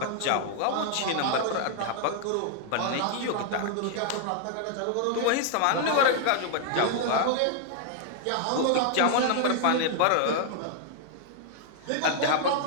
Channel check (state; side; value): different; both; correlation 0.00